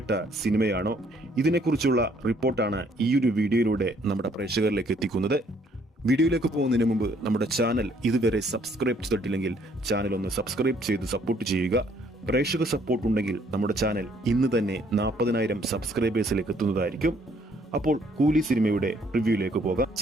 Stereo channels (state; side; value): normal; both; correlation 0.65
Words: സിനിമയാണോ? ഇതിനെക്കുറിച്ചുള്ള റിപ്പോർട്ടാണ് ഈ ഒരു വീഡിയോയിലൂടെ നമ്മുടെ പ്രേക്ഷകരിലേക്ക് എത്തിക്കുന്നത്. വീഡിയോയിലേക്ക് പോകുന്നതിന് മുമ്പ് നമ്മുടെ ചാനൽ ഇതുവരെ സബ്സ്ക്രൈബ് ചെയ്തിട്ടില്ലെങ്കിൽ ചാനൽ ഒന്ന് സബ്സ്ക്രൈബ് ചെയ്ത് സപ്പോർട്ട് ചെയ്യുക. പ്രേക്ഷക സപ്പോർട്ട് ഉണ്ടെങ്കിൽ നമ്മുടെ ചാനൽ ഇന്ന് തന്നെ 40,000 സബ്സ്ക്രൈബേഴ്സിലേക്ക് എത്തുന്നതായിരിക്കും. അപ്പോൾ കൂലി സിനിമയുടെ റിവ്യൂയിലേക്ക് പോകാം.